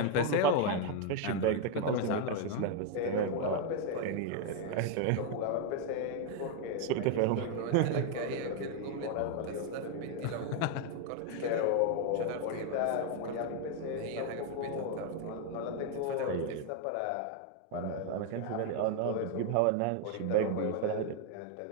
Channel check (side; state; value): both; different; correlation 0.01